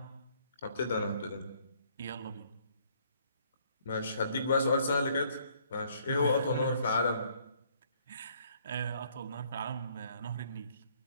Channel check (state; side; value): inverted; both; correlation -0.64